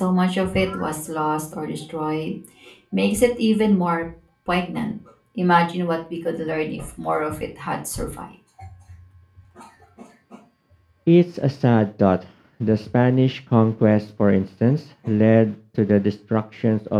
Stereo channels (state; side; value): identical; both; correlation 1.00